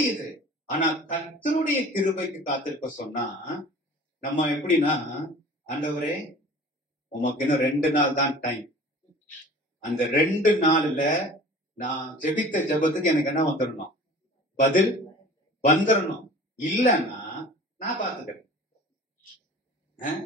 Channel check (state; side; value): normal; both; correlation 0.43